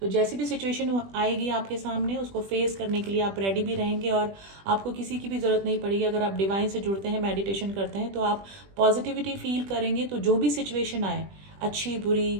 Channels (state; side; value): late; left; 20 ms